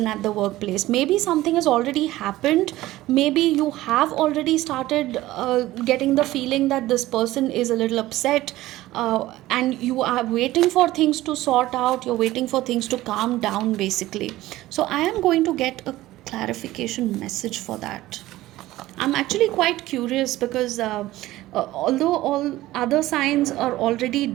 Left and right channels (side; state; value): left; quieter; 16.5 dB